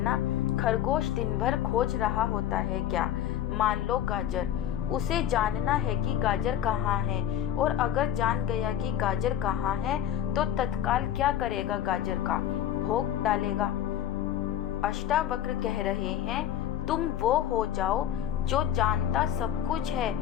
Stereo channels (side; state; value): right; quieter; 11.0 dB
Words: खरगोश दिन भर खोज रहा होता है क्या? मान लो गाजर, उसे जानना है कि गाजर कहाँ है, और अगर जान गया कि गाजर कहाँ है तो तत्काल क्या करेगा? गाजर का भोग डालेगा। अष्टावक्र कह रहे हैं, तुम वो हो जाओ जो जानता सब कुछ है,